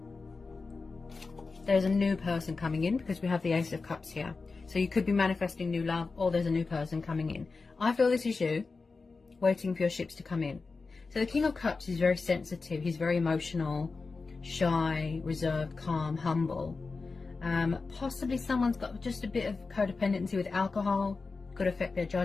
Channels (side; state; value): right; quieter; 4.2 dB